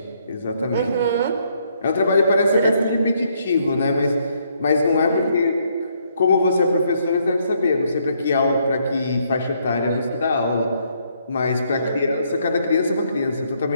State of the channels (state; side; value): inverted; both; correlation -0.71